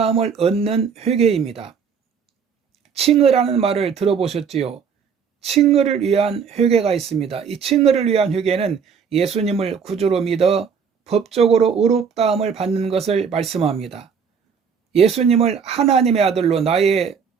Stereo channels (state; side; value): quieter; left; 6.5 dB